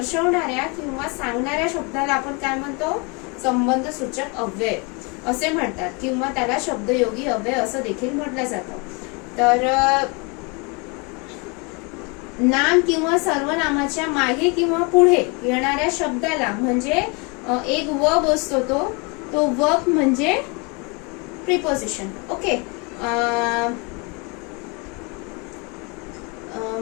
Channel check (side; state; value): right; quieter; 30.8 dB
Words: किंवा सांगणाऱ्या शब्दाला आपण काय म्हणतो? संबंध सूचक अव्यय असे म्हणतात किंवा त्याला शब्दयोगी अव्यय असं देखील म्हटलं जातं. तर नाम किंवा सर्वनामाच्या मागे किंवा पुढे येणाऱ्या शब्दाला म्हणजे एक वर्ब असतो तो वर्ब म्हणजे प्रिपोजिशन. ओके.